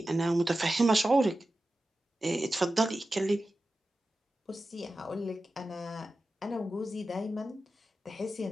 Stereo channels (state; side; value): normal; both; correlation 0.93